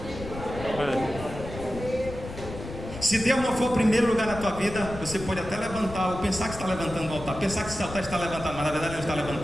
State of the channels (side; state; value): left; noise; rumble, 11 dB below the sound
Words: Se Deus não for o primeiro lugar na tua vida, você pode até levantar ou pensar que está levantando o altar, pensar que esse altar está levantado, mas na verdade não está